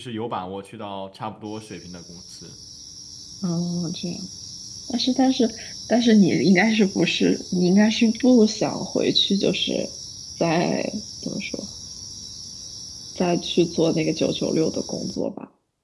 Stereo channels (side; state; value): both; identical; correlation 1.00